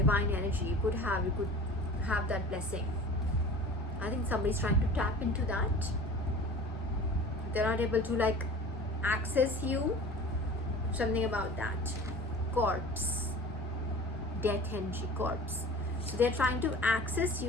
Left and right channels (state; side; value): normal; both; correlation 0.40